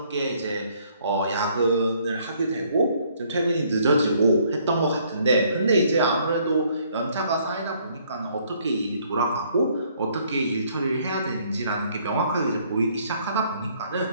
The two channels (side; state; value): both; inverted; correlation -0.65